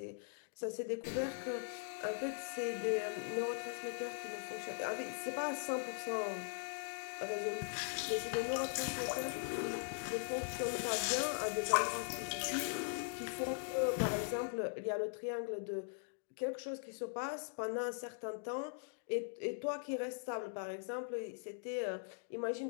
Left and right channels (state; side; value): silent; right; digital silence